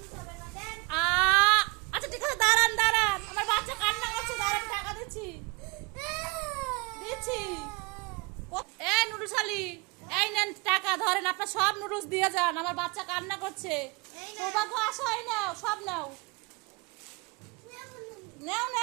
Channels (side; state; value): left; quieter; 27.1 dB